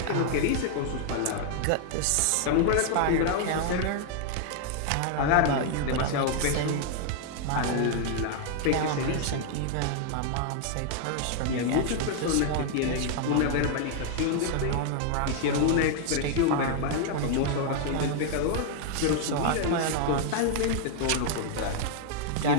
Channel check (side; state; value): both; different; correlation 0.00